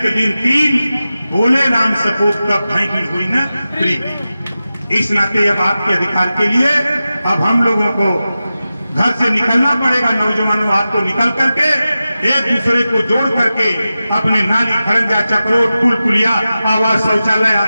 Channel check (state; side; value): inverted; both; correlation -0.94